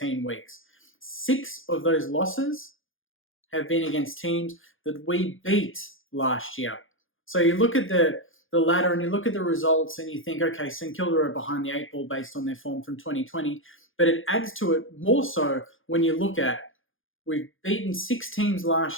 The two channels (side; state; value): right; late; 0.58 ms